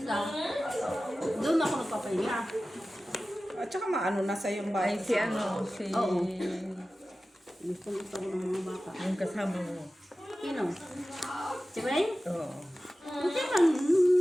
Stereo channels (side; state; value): both; normal; correlation 0.95